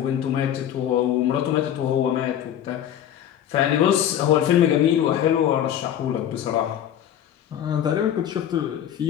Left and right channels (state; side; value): quieter; right; 10.4 dB